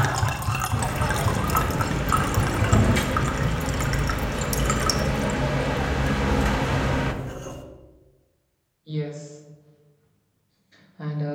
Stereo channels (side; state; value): both; identical; correlation 1.00